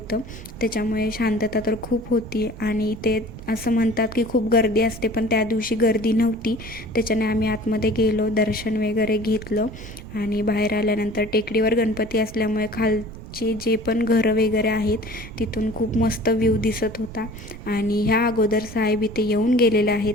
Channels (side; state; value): right; noise; rumble, 14 dB below the sound